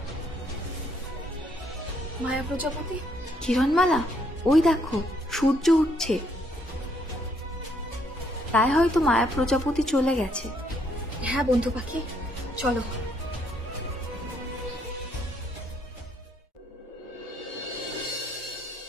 মায়া প্রজাপতি, কিরণমালা, ওই দেখো সূর্য উঠছে, তাই হয়তো মায়া প্রজাপতি চলে গেছে। হ্যাঁ বন্ধু পাখি, চলো।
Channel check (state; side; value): normal; both; correlation 0.70